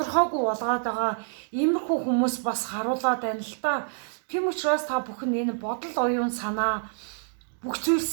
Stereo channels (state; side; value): silent; left; digital silence